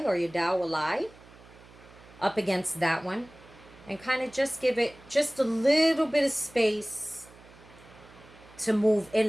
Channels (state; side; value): noise; right; hum, 23 dB below the sound